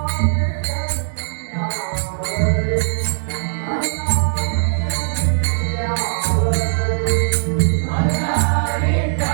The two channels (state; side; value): silent; left; 63 dB below the other